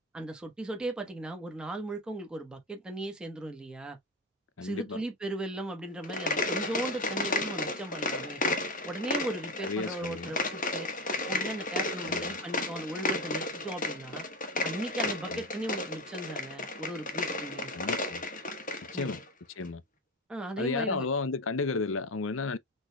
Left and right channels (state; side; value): normal; both; correlation 0.20